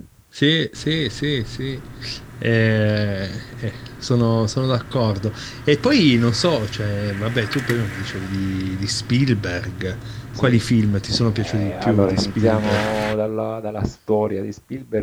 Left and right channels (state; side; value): identical; both; correlation 1.00